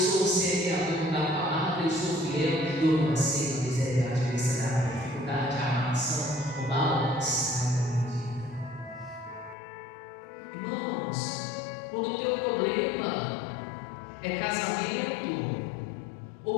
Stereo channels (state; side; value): drops out; right; at 9.6 s